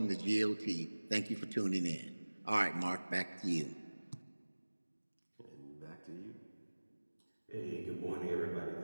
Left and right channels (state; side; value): inverted; both; correlation -1.00